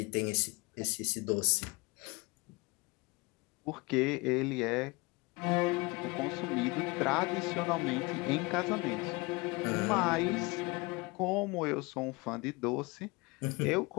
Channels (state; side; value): quieter; right; 25.4 dB